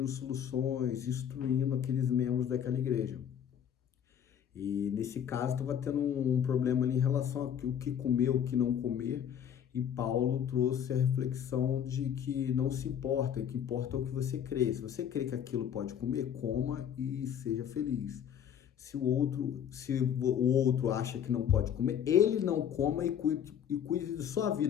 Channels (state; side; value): quieter; right; 9.0 dB